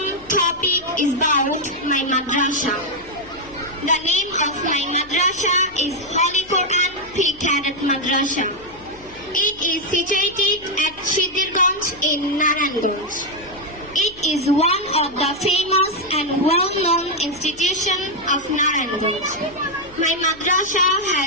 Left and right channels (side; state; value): left; noise; hum, 23 dB below the sound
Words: topic is about my madrasa. The name of my madrasa is Holy Quran Pre-Cadet Madrasa. It is situated at Shidirganj in Narayanganj. It is one of the famous and well-known institutions of Narayanganj. My madrasa